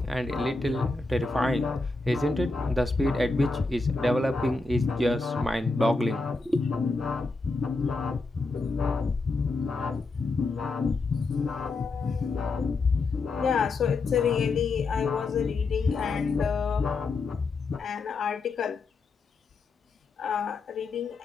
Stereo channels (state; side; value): quieter; right; 3.6 dB